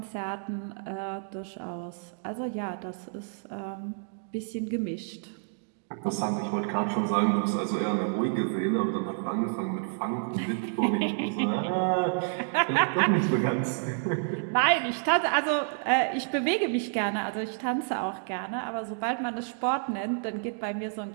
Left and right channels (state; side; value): silent; left; digital silence